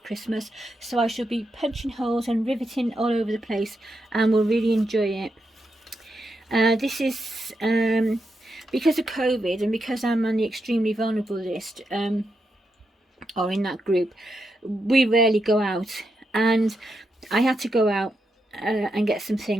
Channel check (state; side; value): normal; both; correlation 0.84